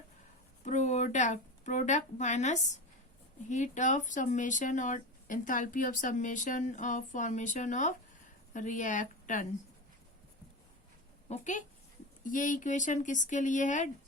product minus heat of summation और enthalpy of summation of formation of reactant. Okay, ये इक्वेशन किसके लिए है?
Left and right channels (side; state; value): both; normal; correlation 0.24